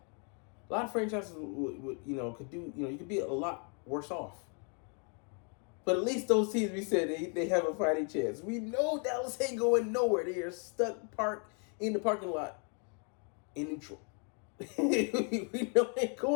A lot of franchises would could do, you could be a lot worse off. But at least those teams, we said they have a fighting chance. We know Dallas ain't going nowhere. They are stuck parked in the parking lot in neutral. We know they ain't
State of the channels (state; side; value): quieter; right; 39.9 dB